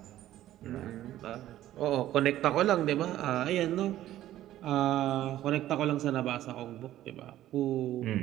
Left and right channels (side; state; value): left; quieter; 13.5 dB